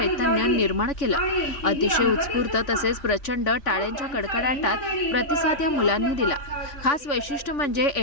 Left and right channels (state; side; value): late; right; 3.5 ms